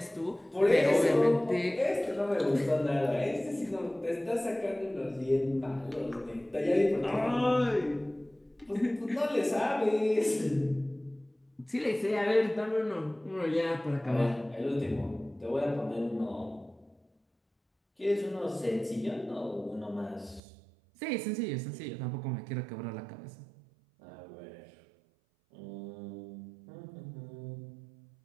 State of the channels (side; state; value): left; drops out; at 20.4 s